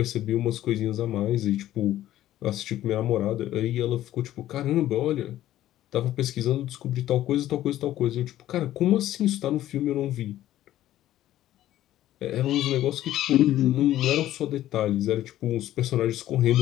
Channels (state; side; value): quieter; right; 13.5 dB